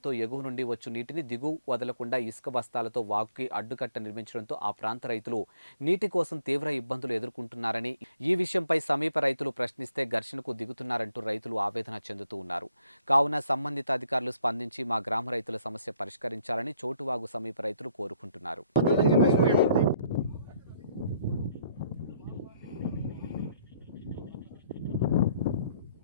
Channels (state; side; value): inverted; both; correlation -0.68